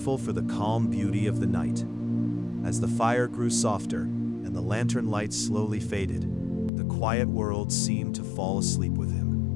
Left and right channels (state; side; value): drops out; right; at 6.7 s